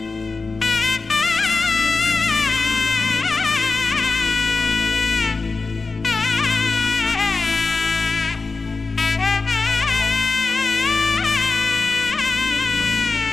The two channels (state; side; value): quieter; right; 4.0 dB